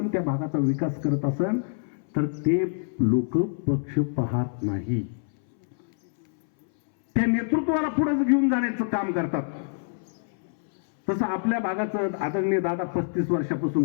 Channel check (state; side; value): silent; right; 61 dB below the other